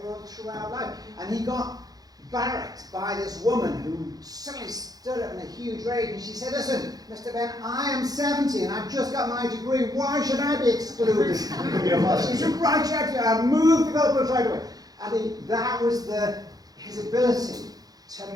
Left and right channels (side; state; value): left; late; 0.18 ms